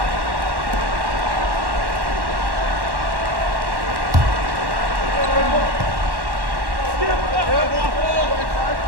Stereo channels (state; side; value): late; left; 1.1 ms